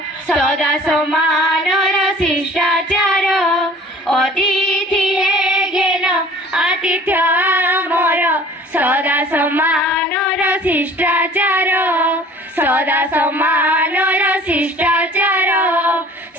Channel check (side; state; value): both; normal; correlation 0.49